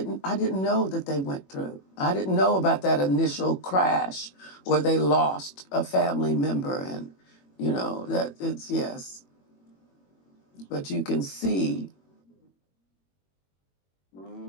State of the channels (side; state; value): right; late; 21 ms